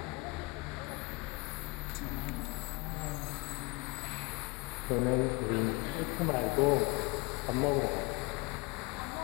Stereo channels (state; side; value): quieter; right; 25.9 dB